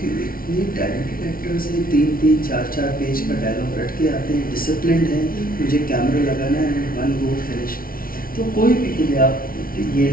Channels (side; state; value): right; late; 0.43 ms